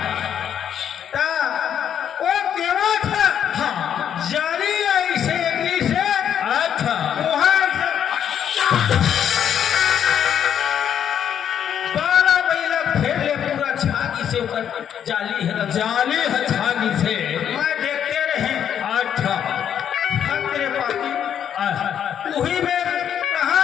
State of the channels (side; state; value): right; quieter; 9.1 dB